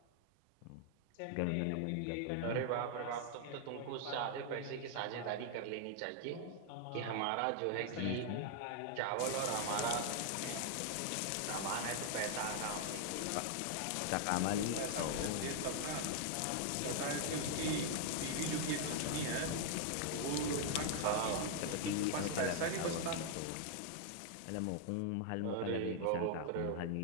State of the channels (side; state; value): both; different; correlation 0.00